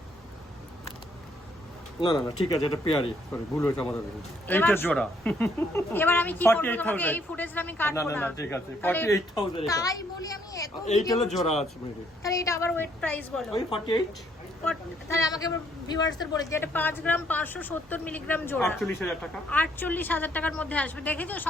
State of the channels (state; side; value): normal; both; correlation 0.68